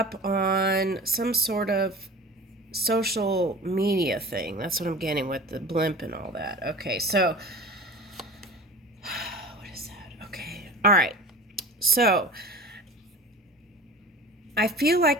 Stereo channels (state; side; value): normal; both; correlation 0.38